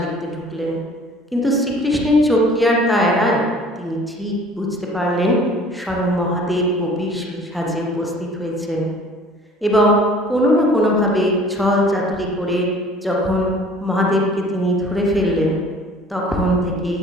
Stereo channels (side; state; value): both; normal; correlation 0.50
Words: দেখতে ঢুকলেন। কিন্তু শ্রীকৃষ্ণের চোখ কি আর তা এড়ায়? তিনি ঠিক বুঝতে পারলেন স্বয়ং মহাদেব গোপী সাজে উপস্থিত হয়েছেন এবং কোনো না কোনোভাবে ছল চাতুরি করে যখন মহাদেবকে তিনি ধরে ফেললেন, তখন থেকে